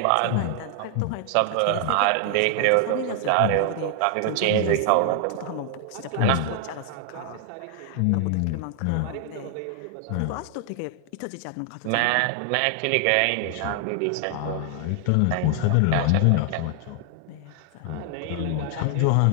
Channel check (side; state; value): both; different; correlation 0.00